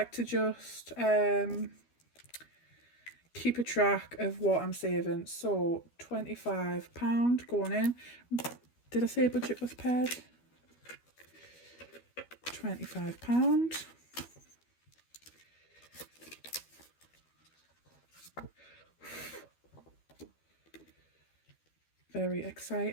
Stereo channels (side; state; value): right; late; 12 ms